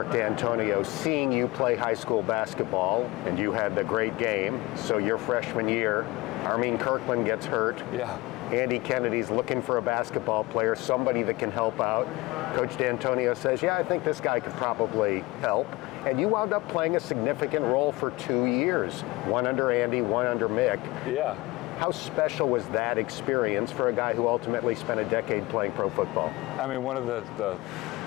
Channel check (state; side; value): quieter; right; 21.5 dB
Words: D'Antonio seeing you play high school basketball, and you had the great game. So your freshman year, Armin Kirkland gets hurt. Yeah. Andy Kennedy's looking for a basketball player, somebody that can help out. Coach D'Antonio says, yeah, I think this guy could probably help. And you wound up playing a significant role for 2 years, one under Andy, one under Mick. Yeah. How special was that experience for a guy who ultimately spent a decade playing pro football? I mean, one of the